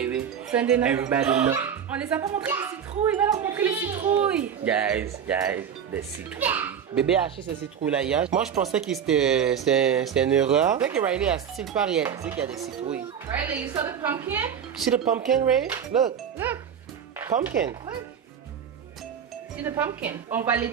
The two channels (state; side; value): quieter; left; 8.1 dB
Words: Sunday night. Everybody know. On les a pas montré les citrouilles. Il va leur montrer les citrouilles. Guys, les citrouilles. Bébé a acheté ces citrouilles là hier. Moi je pensais que c'était une erreur. Peut-être que Riley a still pas réalisé qu'il y a des citrouilles. Riley, you saw the pumpkin? See the pumpkin, Ray? Look. Pumpkin. Look. See the pumpkin. On va les